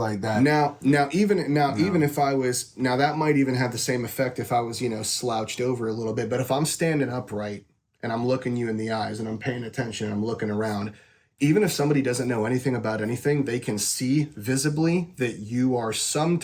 like that. Even if I was that might even have the same effect if I was, you know, slouched over a little bit. But if I'm standing upright and I'm looking you in the eyes and I'm paying attention and I'm looking around, even if somebody doesn't know anything about anything, they can see visibly that you are some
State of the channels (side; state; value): both; identical; correlation 1.00